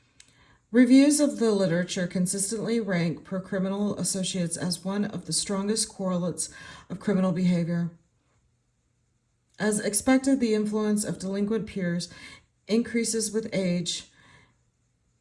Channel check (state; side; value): identical; both; correlation 1.00